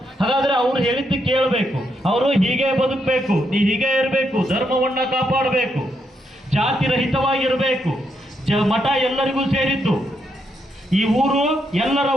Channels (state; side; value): normal; both; correlation 0.79